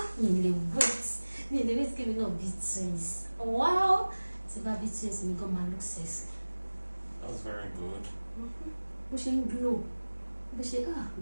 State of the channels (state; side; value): inverted; both; correlation -1.00